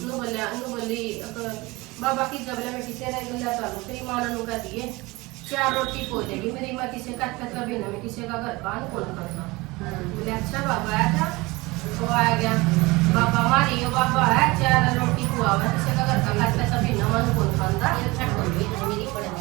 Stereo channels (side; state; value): left; quieter; 22.7 dB